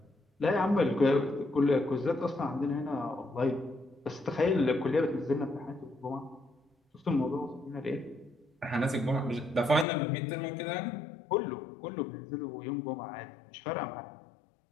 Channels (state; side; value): drops out; right; at 9.9 s